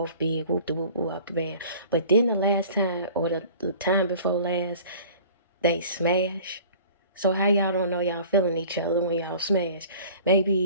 big, whoop de whoop whoop up the band. But then the last time, or the time before last, they smash. So how y'all don't know y'all feeling each other when y'all smash?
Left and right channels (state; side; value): inverted; both; correlation -0.46